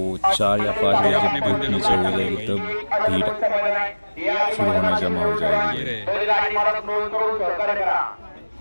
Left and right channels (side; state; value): both; inverted; correlation -1.00